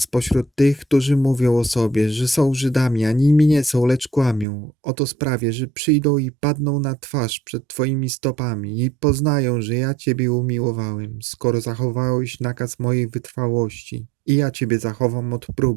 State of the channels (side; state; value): left; drops out; at 4.5 s